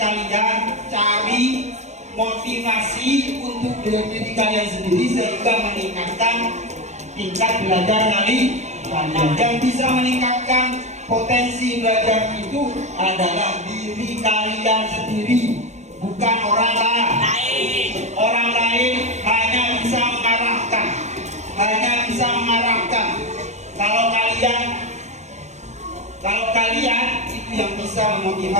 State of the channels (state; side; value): late; left; 0.33 ms